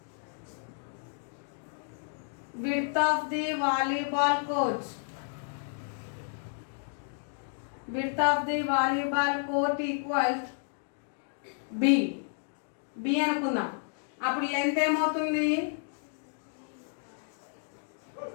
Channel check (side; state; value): right; silent; digital silence